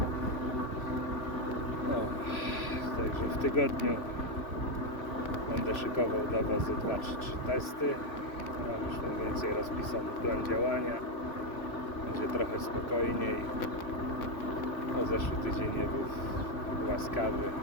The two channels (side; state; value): right; late; 3.0 ms